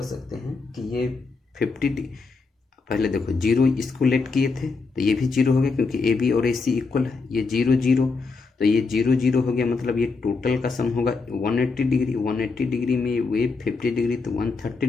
सकते हैं कि ये 50 पहले देखो 0 इसको लेट किए थे तो ये भी 0 हो गया क्योंकि AB और AC इक्वल है। ये 0 0 तो ये 0 0 हो गया मतलब ये टोटल का सम होगा 180 डिग्री। 180 डिग्री में वे 50 डिग्री तो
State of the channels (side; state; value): right; quieter; 4.3 dB